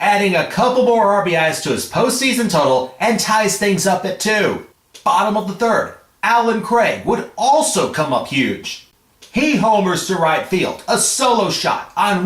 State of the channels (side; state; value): both; identical; correlation 1.00